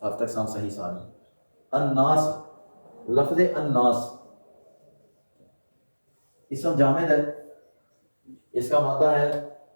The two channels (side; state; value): both; inverted; correlation -1.00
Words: ہفتہ اقسام صحیح سالم. الناس، لفظ الناس اسم جامد ہے، اس کا مادہ ہے